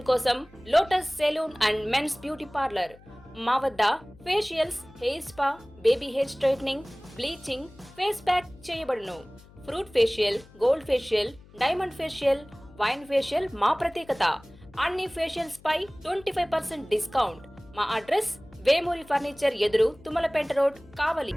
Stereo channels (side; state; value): left; noise; hum, 24 dB below the sound